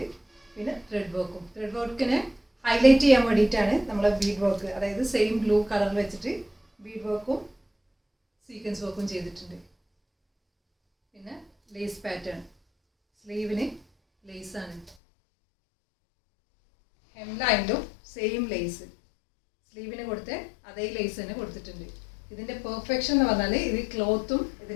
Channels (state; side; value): drops out; right; at 15.0 s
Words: പിന്നെ ത്രെഡ് വർക്കും. ത്രെഡ് വർക്കിനെ ഹൈലൈറ്റ് ചെയ്യാൻ വേണ്ടിയിട്ടാണ് നമ്മൾ ബീഡ് വർക്ക്, അതായത് സെയിം ബ്ലൂ കളറിൽ വെച്ചിട്ട് ബീഡ് വർക്കും സീക്വൻസ് വർക്കും ചെയ്തിട്ടുണ്ട്. പിന്നെ ലേസ് പാറ്റേൺ, സ്ലീവിന് ലേസ് ആണ്. ഹെംലൈനിലും സെയിം ലേസ്, സ്ലീവിന് കൊടുത്ത് അതേ ലേസ് തന്നെ കൊടുത്തിട്ടുണ്ട്. ഇതിന്റെ പെർഫെക്ഷൻ എന്ന് പറഞ്ഞാൽ ഇത് ക്ലോത്തും